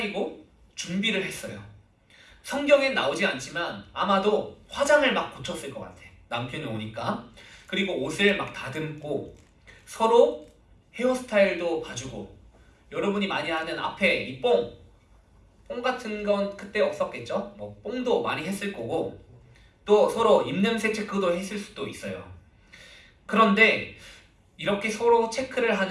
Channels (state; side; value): identical; both; correlation 1.00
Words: 준비를 했어요. 성경엔 나오지 않지만 아마도 화장을 막 고쳤을 것 같아. 남편이 오니까. 그리고 옷을 막 다듬고 서로 헤어스타일도 봐주고, 여러분이 많이 하는 앞에 이 뽕 같은 건 그때 없었겠죠? 뭐 뽕도 많이 했을 거고, 또 서로 입냄새 체크도 했을 수도 있어요. 그런데 이렇게 서로 체크를